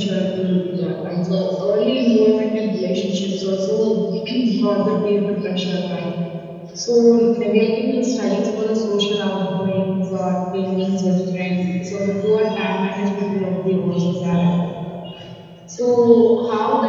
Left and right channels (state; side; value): identical; both; correlation 1.00